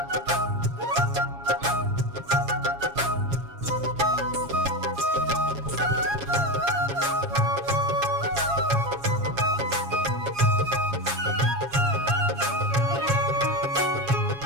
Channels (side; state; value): left; late; 7.3 ms